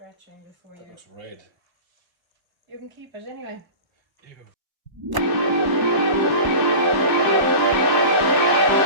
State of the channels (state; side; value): late; left; 1.0 ms